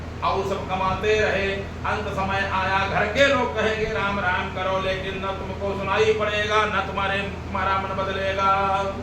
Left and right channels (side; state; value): both; identical; correlation 1.00